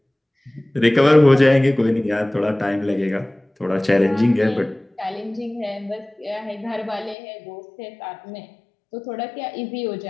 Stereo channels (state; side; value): drops out; right; at 7.2 s